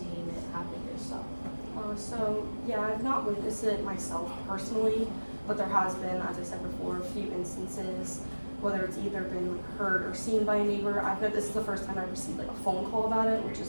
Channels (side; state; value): both; inverted; correlation -1.00